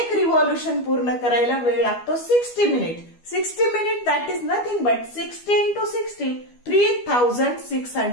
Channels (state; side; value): late; right; 12 ms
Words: रिव्हॉल्यूशन पूर्ण करायला वेळ लागतो 60 minute. 60 minute that is nothing but 60 into 60